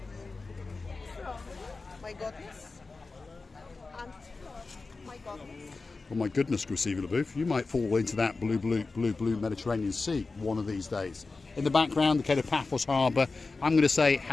my goodness. And my goodness. Oh my goodness, Graciela LaBouffe, you might fall into that blue Mediterranean Sea one of these days. In the background, the Kato Paphos Harbour. I'm going to say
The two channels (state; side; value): quieter; right; 3.9 dB